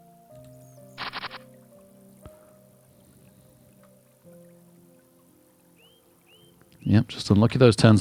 Yep, just unlucky those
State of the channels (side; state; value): both; identical; correlation 1.00